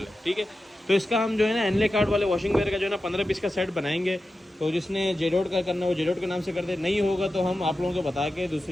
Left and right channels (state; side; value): normal; both; correlation 0.92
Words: ठीक है। तो इसका हम जो है ना एनले कार्ड वाले वॉशिंग वेयर का जो है ना 15 पीस का सेट बनाएंगे। तो जिसने जेडोट का करना हो जेडोट के नाम से कर दे, नहीं होगा तो हम आप लोगों को बता के